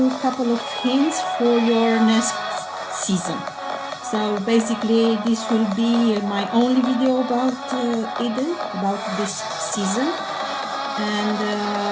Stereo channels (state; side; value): identical; both; correlation 1.00